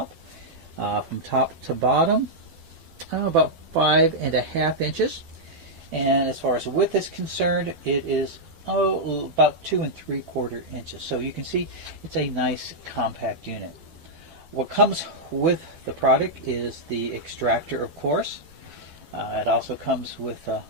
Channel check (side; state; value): left; late; 12 ms